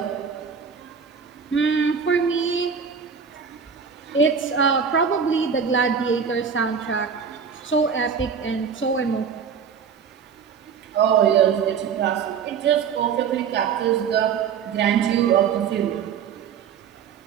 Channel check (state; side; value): quieter; left; 6.7 dB